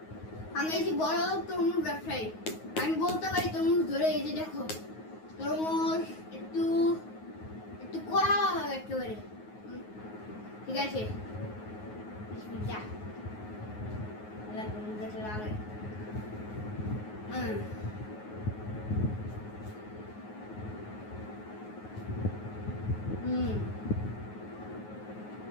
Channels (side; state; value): right; late; 9.4 ms